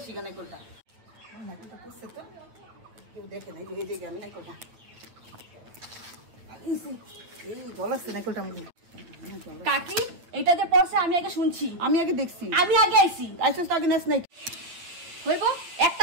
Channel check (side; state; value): left; late; 8.7 ms